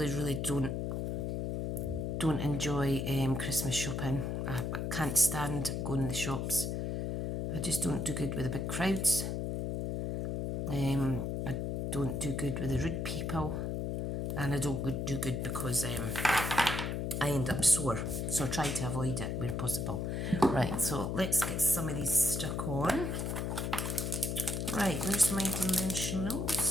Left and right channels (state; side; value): noise; left; hum, 1 dB below the sound